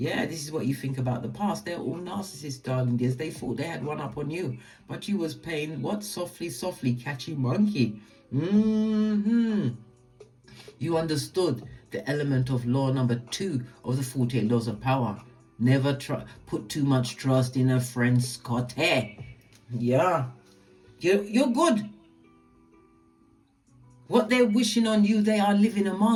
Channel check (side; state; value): both; identical; correlation 1.00